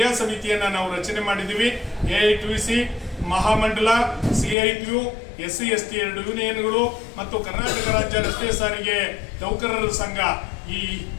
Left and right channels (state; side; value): drops out; right; at 4.5 s